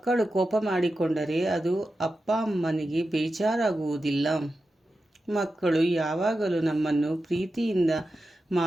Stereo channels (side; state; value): both; normal; correlation 0.91